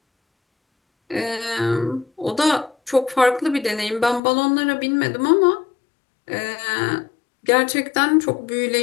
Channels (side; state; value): right; drops out; at 4.2 s